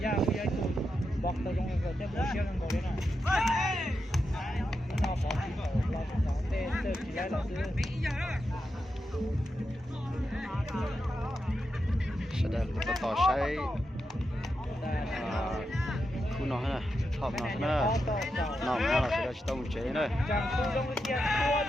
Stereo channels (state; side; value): normal; both; correlation 0.87